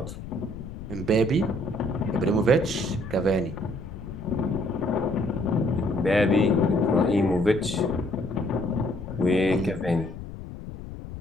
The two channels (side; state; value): left; noise; rumble, 11 dB below the sound